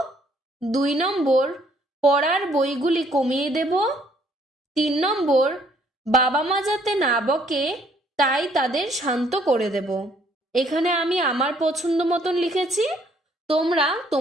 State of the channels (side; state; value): both; normal; correlation 0.65